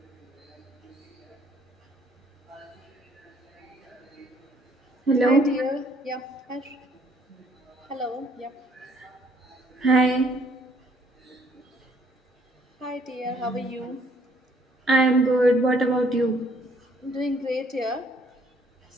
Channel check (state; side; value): normal; both; correlation 0.64